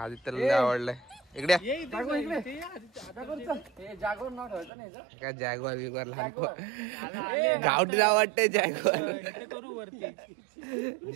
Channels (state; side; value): drops out; left; at 4.7 s